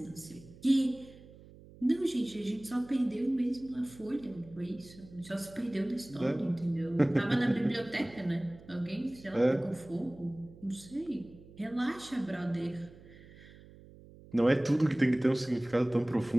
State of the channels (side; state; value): right; noise; hum, 21 dB below the sound